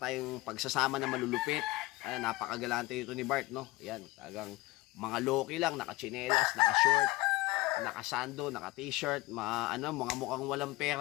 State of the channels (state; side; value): quieter; right; 20.4 dB